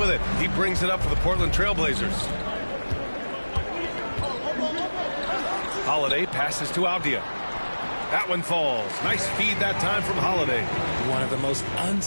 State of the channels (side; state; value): both; inverted; correlation -1.00